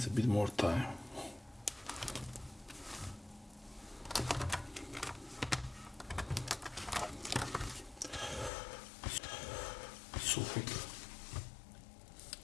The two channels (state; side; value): drops out; right; at 8.5 s